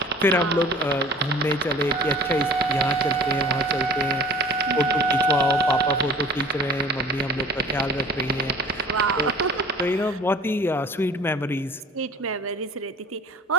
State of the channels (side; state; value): both; normal; correlation 0.46